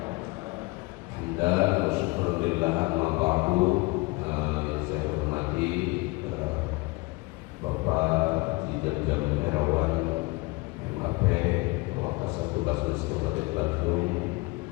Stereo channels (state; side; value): quieter; right; 24.6 dB